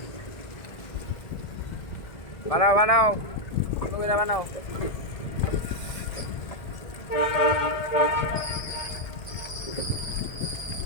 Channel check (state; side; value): late; right; 1.7 ms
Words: বানাও বানাও বানাও।